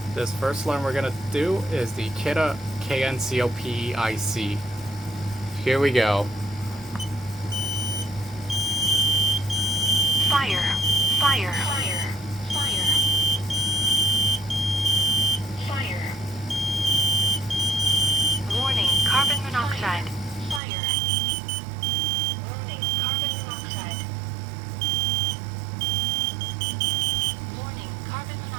this first alarm we're going to do is the Kidde KN-COPE-IC. Here we go. Fire, fire, fire, fire, fire. Warning, carbon monoxide. Fire. Warning, carbon monoxide. Warning, carbon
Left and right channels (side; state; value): left; drops out; at 20.6 s